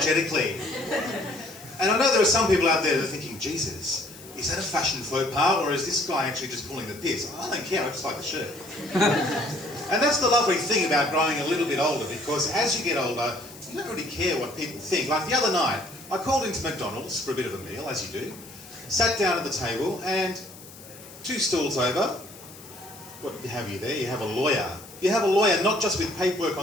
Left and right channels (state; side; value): noise; left; hiss, 19 dB below the sound